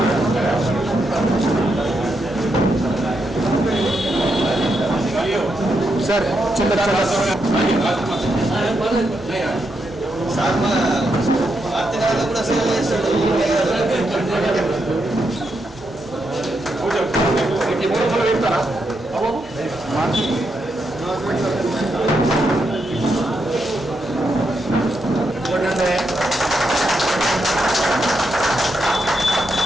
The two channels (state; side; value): noise; right; hum, 25 dB below the sound